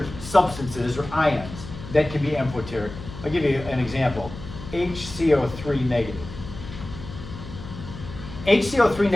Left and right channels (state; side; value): noise; left; hum, 13 dB below the sound